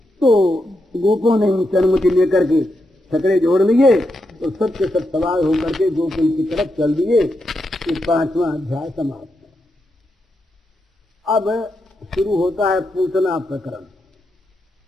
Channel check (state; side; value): normal; both; correlation 0.84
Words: तो गोपों ने उनसे अनुमति लेकर के छकड़े जोड़ लिए तो सब के सब सवार होकर के गोकुल की तरफ चल दिए। ये 5वां अध्याय समाप्त। अब शुरू होता है पूतना प्रकरण,